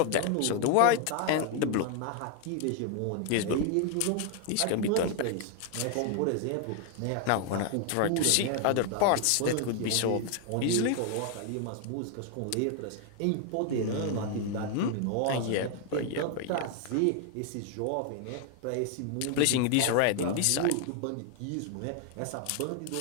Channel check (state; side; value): different; both; correlation 0.00